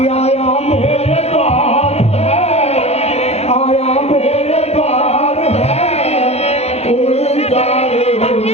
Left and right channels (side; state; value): right; late; 0.31 ms